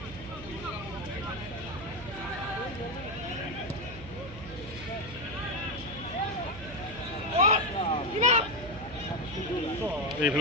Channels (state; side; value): noise; right; hum, 14 dB below the sound